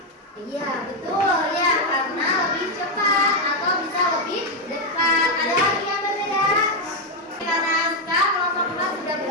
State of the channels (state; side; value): normal; both; correlation 0.04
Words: Iya betul ya, karena lebih cepat atau bisa lebih dekat. Ada lagi yang berbeda? Karena Aska kelompok 4 sudah